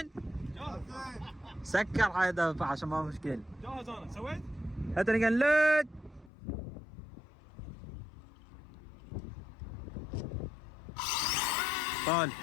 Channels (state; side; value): drops out; right; at 6.3 s